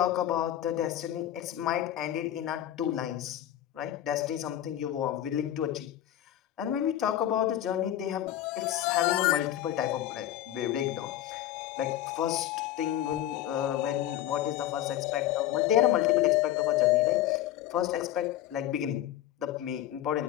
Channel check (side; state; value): right; quieter; 12.6 dB